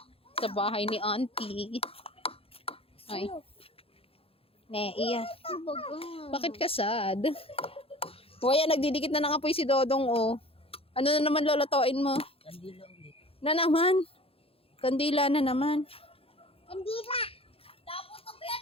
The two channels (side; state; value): right; late; 0.27 ms